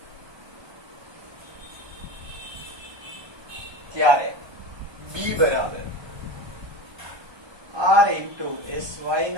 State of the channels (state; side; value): late; left; 1.3 ms